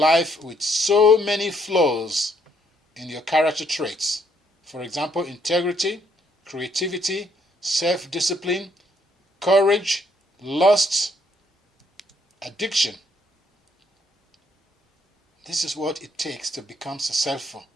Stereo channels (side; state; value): both; normal; correlation 0.69